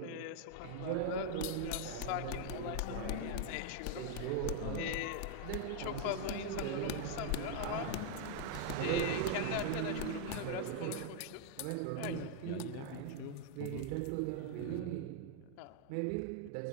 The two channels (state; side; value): different; both; correlation 0.00